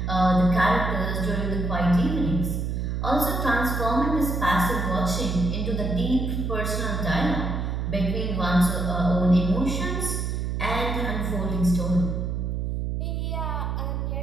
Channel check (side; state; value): right; noise; hum, 1 dB below the sound